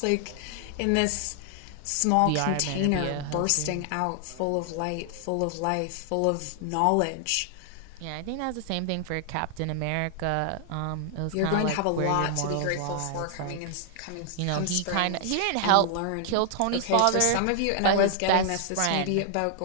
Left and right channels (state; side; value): different; both; correlation 0.00